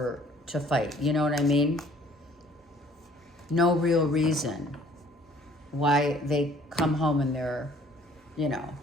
fight. You know what I mean? No real reason why they come home and they're,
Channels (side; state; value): both; normal; correlation 0.57